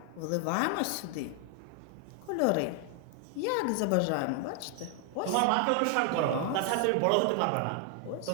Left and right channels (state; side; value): different; both; correlation 0.00